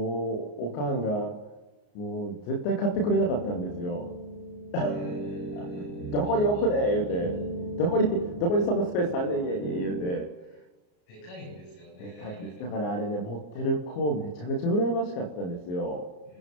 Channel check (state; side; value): late; right; 33 ms